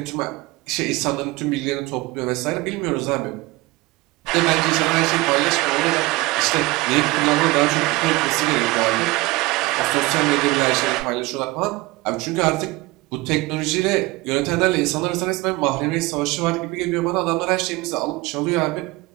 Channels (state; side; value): quieter; left; 21.5 dB